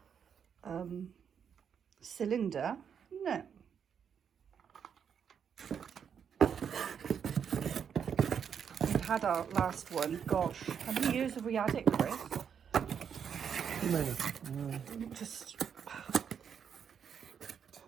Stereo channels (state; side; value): quieter; left; 7.6 dB